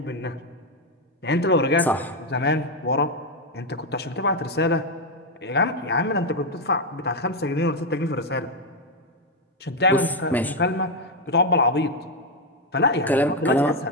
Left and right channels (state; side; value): normal; both; correlation 0.04